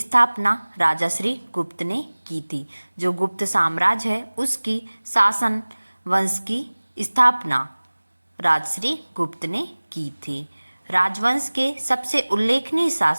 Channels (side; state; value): both; inverted; correlation -1.00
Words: राजा श्री गुप्त ने की थी। जो गुप्त साम्राज्य है उसकी शासन वंश की स्थापना राजश्री गुप्त ने की थी। राजवंश के सबसे उल्लेखनीय